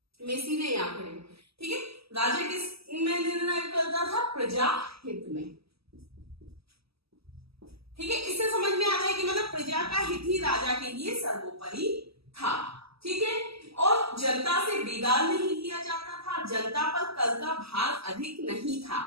मैं सीधे यहाँ पर। ठीक है, राजा किस में निर्णय करता था? प्रजा हित में। ठीक है, इससे समझ में आ रहा है कि मतलब प्रजा का हित ही राजा के लिए सर्वोपरि था। ठीक है, और जनता से बिगाड़ नहीं किया जाता था, जनता पर कर का भार अधिक नहीं था।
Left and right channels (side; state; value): left; late; 0.77 ms